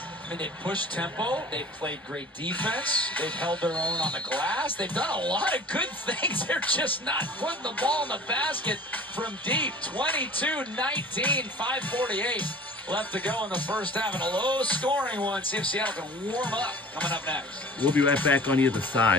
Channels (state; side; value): normal; both; correlation 0.43